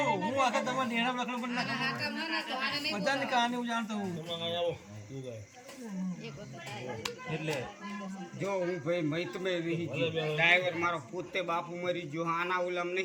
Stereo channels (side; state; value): both; identical; correlation 1.00